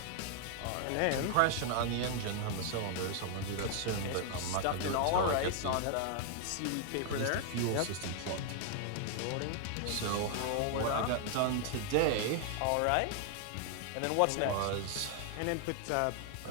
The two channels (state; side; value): different; both; correlation 0.00